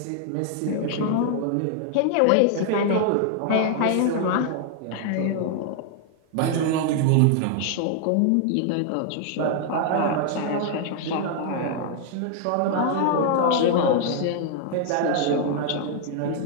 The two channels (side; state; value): both; different; correlation 0.00